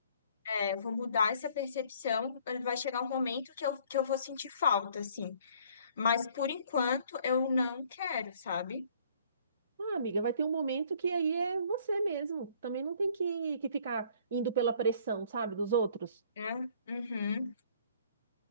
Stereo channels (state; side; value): inverted; both; correlation -0.59